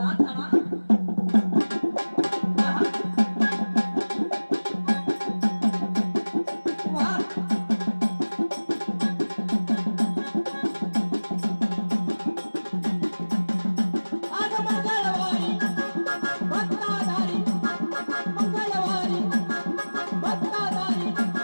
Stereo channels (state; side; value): inverted; both; correlation -1.00